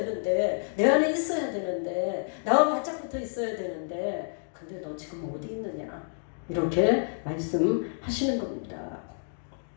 내 안에 있어야 되는데, 나와 바짝 붙어 있어야 되는데, 근데 너 지금 어디 있느냐? 이렇게 말씀하시는 겁니다.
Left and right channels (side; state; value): right; silent; digital silence